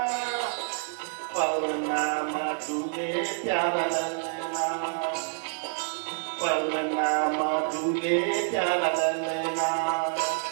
पलना मधुरे प्यारा ललना, पलना मधुरे प्यारा ललना।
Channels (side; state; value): left; silent; 59 dB below the other